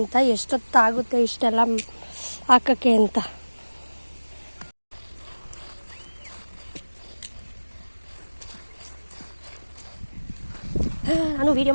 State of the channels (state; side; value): inverted; both; correlation -1.00